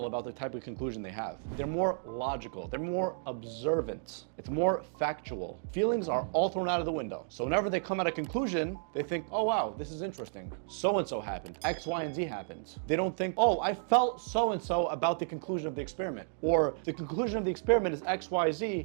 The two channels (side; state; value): left; silent; digital silence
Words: about the type of conclusion they have. They're more logical, they're more observant, it's more factual. Feelings are all thrown out of the window. So whenever they come at a conclusion, they think, oh wow, this is interesting. So-and-so happened, X, Y, and Z happened. They don't think, oh, I felt so-and-so about the conclusion of the experiment, or the conclusion of the experiment is X, Y,